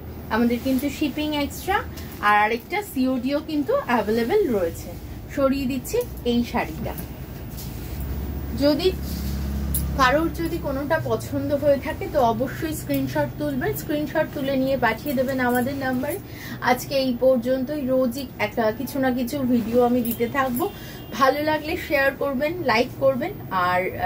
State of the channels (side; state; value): both; identical; correlation 1.00